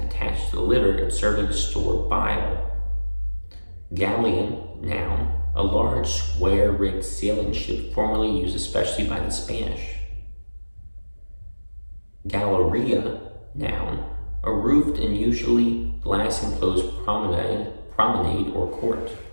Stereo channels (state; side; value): inverted; both; correlation -1.00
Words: attached to the liver and serving to store bile. Galleon, noun, a large square-rigged sailing ship formerly used especially by the Spanish. Galleria, noun, a roofed and usually glass-enclosed promenade or court.